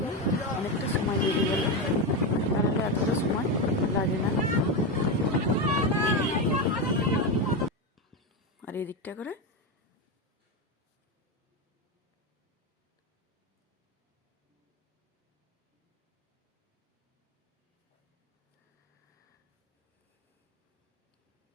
অনেকটা সময় লেগে গেল। তাহলে এতটা সময় লাগে না। আর এদিকটা করে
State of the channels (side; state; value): both; normal; correlation 0.12